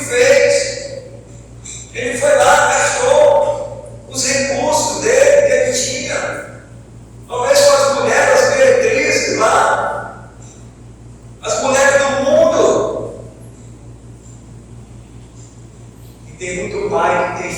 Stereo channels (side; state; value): both; identical; correlation 1.00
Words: Ele foi lá, gastou os recursos dele que ele tinha, talvez com as mulheres, as meretrizes lá, as mulheres do mundo. E tem muito pai que tem